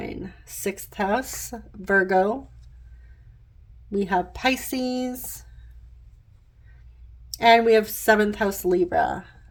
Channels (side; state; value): both; identical; correlation 1.00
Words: 6th house, Virgo. We have Pisces. And we have 7th house, Libra.